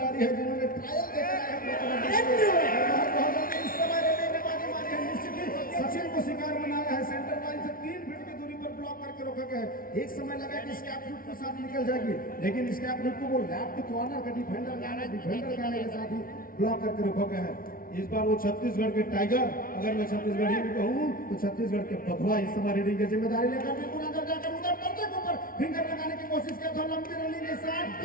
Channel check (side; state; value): right; late; 0.42 ms